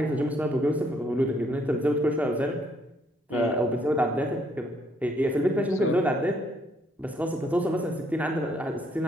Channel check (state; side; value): normal; both; correlation 0.69